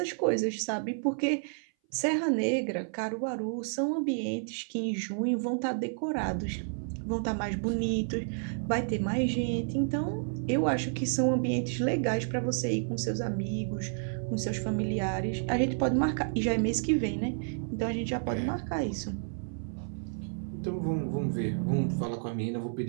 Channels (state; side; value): silent; left; 57 dB below the other